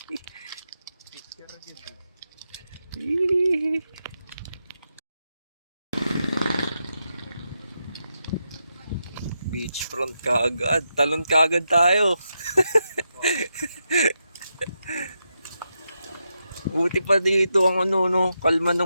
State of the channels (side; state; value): both; inverted; correlation -0.85